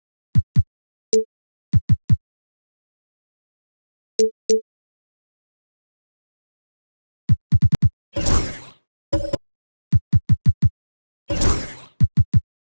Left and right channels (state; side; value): inverted; both; correlation -1.00